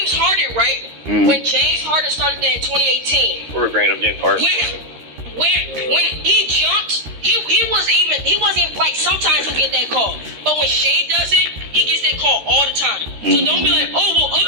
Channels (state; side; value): late; left; 13 ms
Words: Harden, right? When James Harden started that in 2018. We're bringing up James Harden. When he jumped, he wasn't even like sometimes he'll get that call. But when Shea does it, he gets that call all the time. So don't be like, oh well,